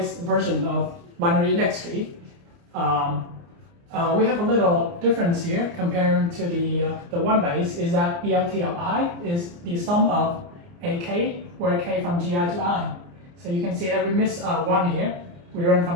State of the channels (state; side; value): late; left; 29 ms